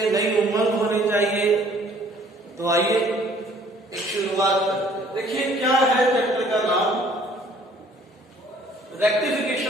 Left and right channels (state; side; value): normal; both; correlation 0.57